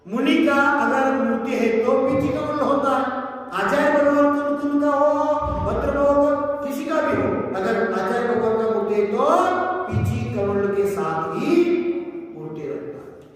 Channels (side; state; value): both; identical; correlation 1.00